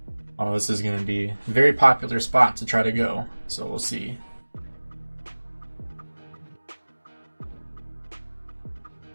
Oh, this is going to be a very popular spot to try to go, so we'll see.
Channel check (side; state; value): both; inverted; correlation -1.00